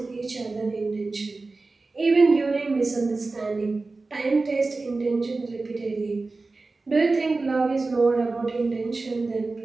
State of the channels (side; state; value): left; quieter; 3.6 dB